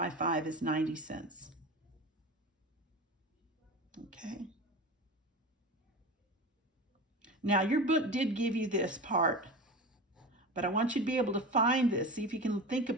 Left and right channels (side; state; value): both; normal; correlation 0.30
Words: 5 is 90 cents. Okay. Now, your book did give you this part, but I want you to be able to find this. See if you can think